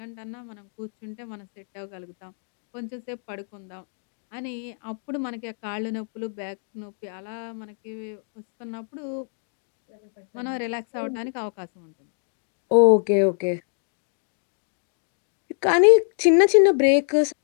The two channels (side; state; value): right; silent; digital silence